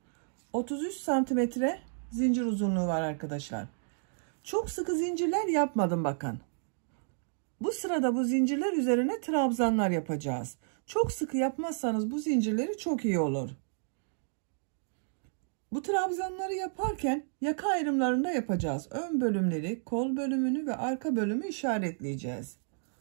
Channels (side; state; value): left; silent; digital silence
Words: 33 santimetre zincir uzunluğu var arkadaşlar. Çok sıkı zincirler yapmadım bakın. Bu sırada bu zincirler üzerine trabzanlar yapacağız. Çok sıkı yapmazsanız bu zincirleri çok iyi olur. Bu trabzanları yaparken yaka ayrımlarında yapacağız. Ön bölümleri, kol bölümünü ve arka bölümü işaretleyeceğiz.